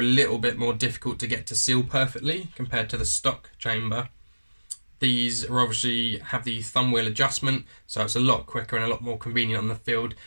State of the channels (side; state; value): both; inverted; correlation -1.00